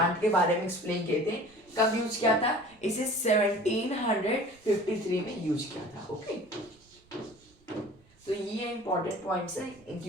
के बारे में एक्सप्लेन किए थे। कब यूज किया था? इसे 1753 में यूज किया था। ओके, तो ये इंपॉर्टेंट पॉइंट्स है।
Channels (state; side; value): normal; both; correlation 0.44